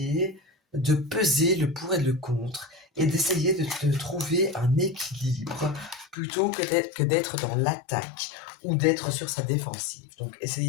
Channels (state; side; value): drops out; right; at 6.2 s